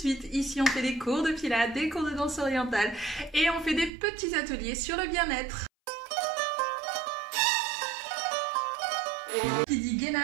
Ici, on fait des cours de pilates, des cours de danse orientale et on fait des petits ateliers sur le bien-être. Qui dit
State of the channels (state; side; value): drops out; left; at 3.9 s